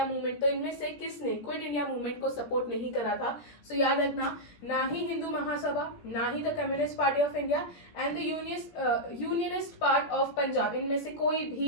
Movement? तो इनमें से किसने क्विट इंडिया मूवमेंट को सपोर्ट नहीं करा था? सो याद रखना, ना ही हिंदू महासभा, ना ही the communist party of India and the unionist part of Punjab, इनमें से कोई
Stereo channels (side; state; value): right; late; 17 ms